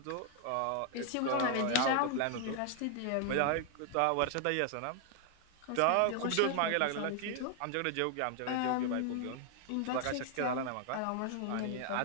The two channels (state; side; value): different; both; correlation 0.00